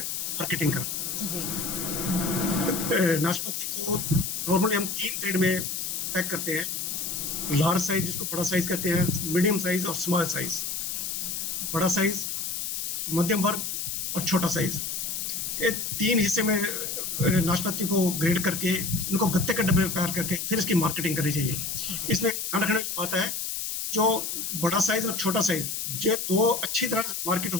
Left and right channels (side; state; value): left; noise; hiss, 3 dB below the sound